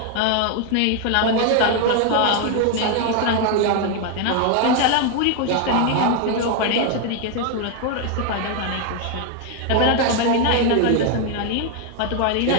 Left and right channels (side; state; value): both; different; correlation 0.01